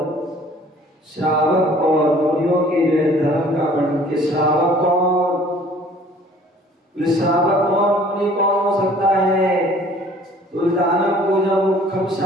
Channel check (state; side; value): normal; both; correlation 0.53